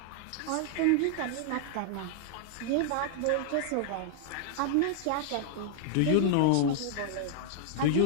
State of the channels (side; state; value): both; different; correlation 0.00